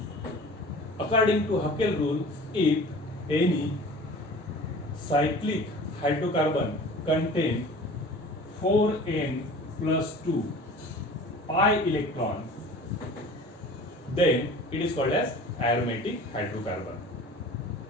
According to Haeckel rule, if any cyclic hydrocarbon contain 4n plus 2 pi electron, then it is called as aromatic hydrocarbon.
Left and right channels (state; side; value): normal; both; correlation 0.42